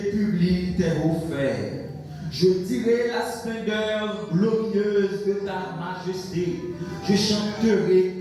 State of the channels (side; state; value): both; identical; correlation 1.00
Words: tes hauts faits. Je dirai la splendeur glorieuse de ta majesté. Je chanterai